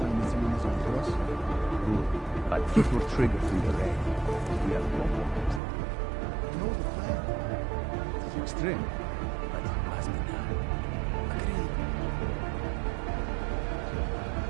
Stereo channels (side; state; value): left; drops out; at 5.6 s